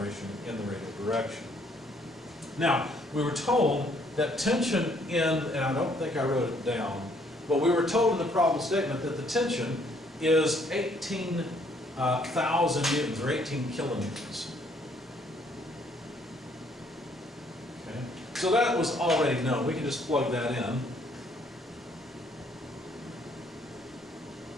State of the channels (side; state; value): both; normal; correlation 0.65